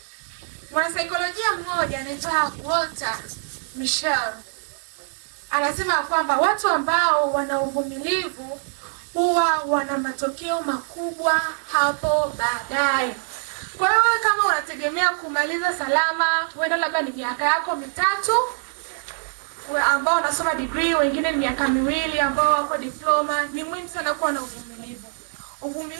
Mwanasaikolojia mmoja anaitwa Walter Mischel anasema kwamba watu ambao wana uvumilivu huwa wana matokeo makubwa hapo baadaye. Kwa hiyo kama unategemea kumaliza salama, huenda labda ni miaka yako 3, ambao unasoma degree, wengine ni miaka 2 ambao wako diploma, ni muhimu sana kuwa na uvumilivu.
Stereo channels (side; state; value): left; silent; digital silence